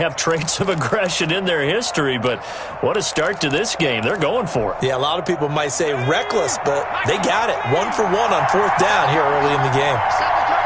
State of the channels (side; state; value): both; identical; correlation 1.00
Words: traits of aggression in their history, but what a start to this game. They're going for it. Yeah, a lot of people might say reckless, but they got it. 1 for 1 on 4th down here early in the game.